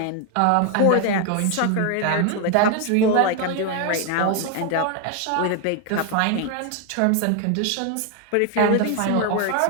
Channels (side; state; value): both; different; correlation 0.01